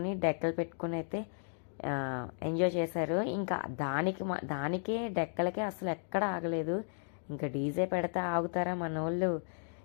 డెక్కలు పెట్టుకుని అయితే ఎంజాయ్ చేశారు. ఇంకా దానికే డెక్కలకే అసలు ఎక్కడ ఆగలేదు. ఇంకా డీజే పెడితే ఆగుతారా మన వాళ్ళు.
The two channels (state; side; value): silent; right; digital silence